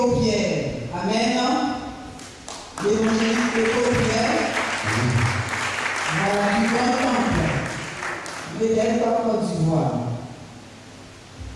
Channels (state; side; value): identical; both; correlation 1.00